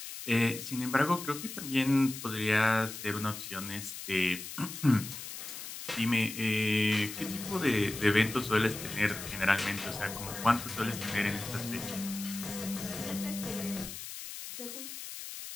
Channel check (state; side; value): noise; left; hiss, 9 dB below the sound